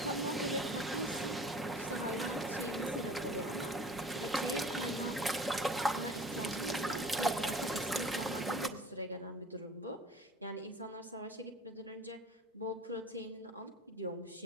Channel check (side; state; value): both; normal; correlation 0.45